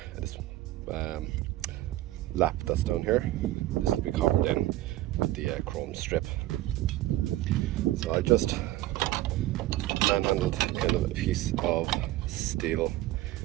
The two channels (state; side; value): quieter; left; 16.2 dB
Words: This lap that's down here, this will be covered in with the chrome strip. So I just manhandled kind of a piece of steel